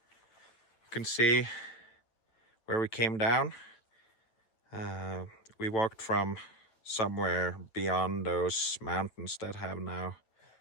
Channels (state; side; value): late; right; 8.8 ms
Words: You can see where we came down. We walked from somewhere beyond those mountains that have now